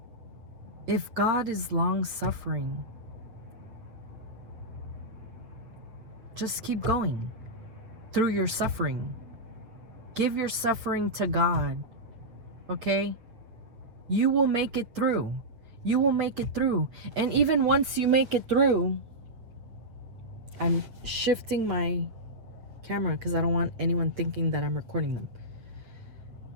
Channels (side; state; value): left; late; 8.5 ms